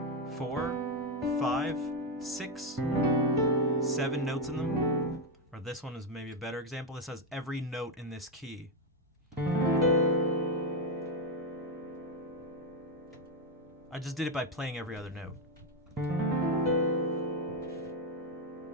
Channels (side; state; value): both; normal; correlation 0.07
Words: 4, 5, 6, 7 notes in them. Or this one is maybe a better example. This has every note in this key. I just did it by playing every other note.